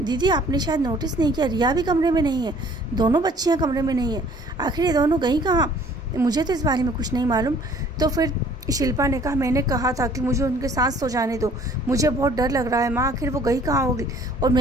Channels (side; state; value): both; normal; correlation 0.55